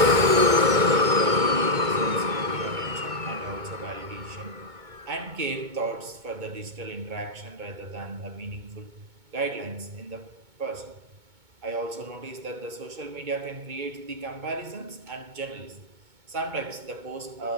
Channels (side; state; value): left; late; 2.2 ms